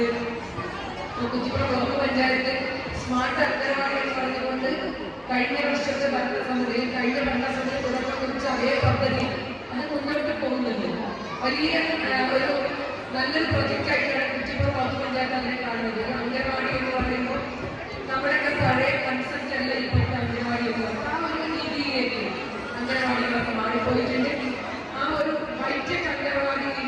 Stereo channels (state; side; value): identical; both; correlation 1.00